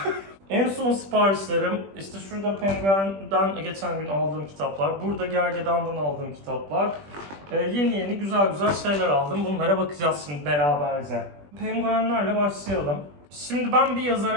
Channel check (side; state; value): left; late; 20 ms